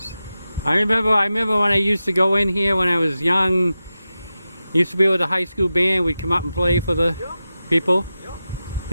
I remember when I used to go in here when I was young. Used to be with the high school band. We'd come up and play for the people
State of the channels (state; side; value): inverted; both; correlation -0.92